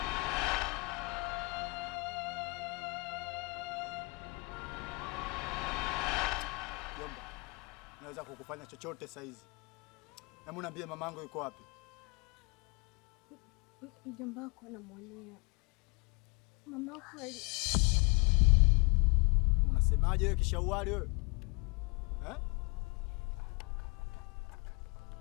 Jomba, naweza kukufanya chochote saa hizi. Hebu niambie mamangu yuko wapi? Mjomba wako anamuonea. Mama wako Unasemaje wewe kishauali wewe? Eh?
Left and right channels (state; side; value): quieter; right; 30.2 dB